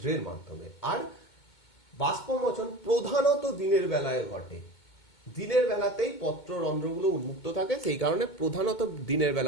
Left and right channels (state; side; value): late; right; 2.2 ms